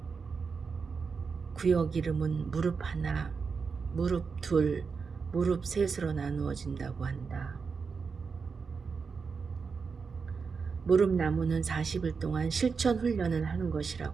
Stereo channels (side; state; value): left; quieter; 5.3 dB